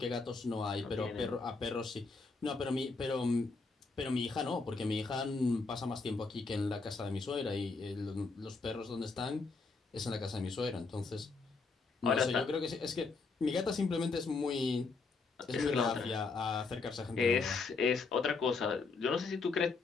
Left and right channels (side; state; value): right; quieter; 4.2 dB